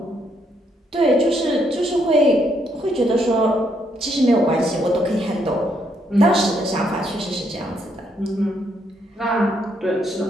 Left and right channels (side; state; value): both; normal; correlation 0.74